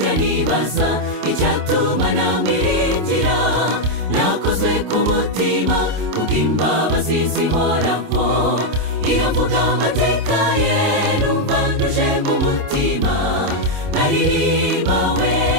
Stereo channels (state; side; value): late; left; 27 ms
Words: nibaza icyatuma namwiringira, nakoze ku mutima kubw'imbabazi zihoraho, iyo mvuga amateka ye numva kumutima, nkaririmba we,